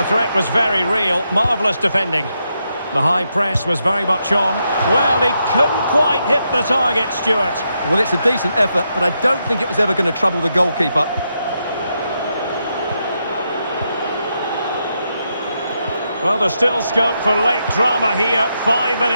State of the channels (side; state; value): both; inverted; correlation -0.82